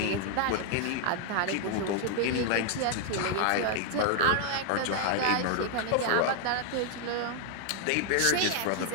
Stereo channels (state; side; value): different; both; correlation 0.00